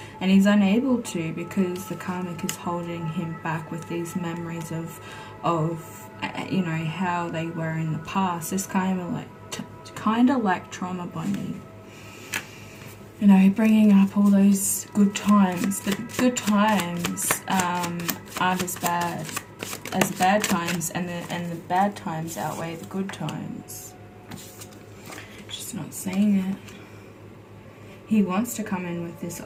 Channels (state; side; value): identical; both; correlation 1.00